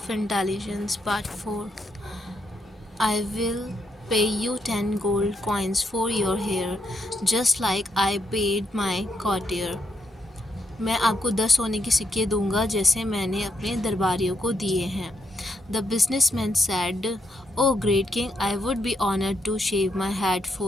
Intelligence Part 4. I will pay you 10 gold coins for your hair, just like I paid my courtier. मैं आपको 10 सोने के सिक्के दूंगा जैसे मैंने अपने दरबारियों को दिए हैं. The businessman said, "Oh great king, I would be honored to shave my head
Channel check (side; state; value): both; normal; correlation 0.78